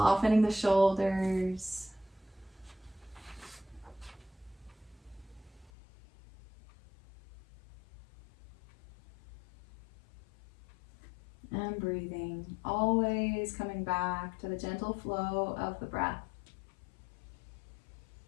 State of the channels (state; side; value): drops out; right; at 5.7 s